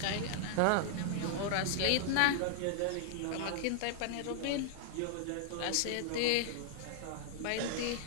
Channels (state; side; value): different; both; correlation -0.01